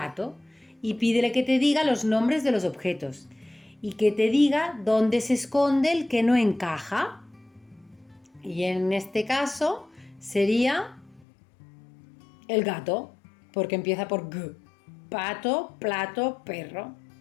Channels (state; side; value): drops out; right; at 11.2 s